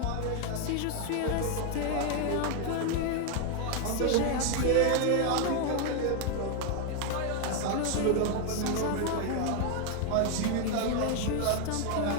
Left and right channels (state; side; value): different; both; correlation 0.01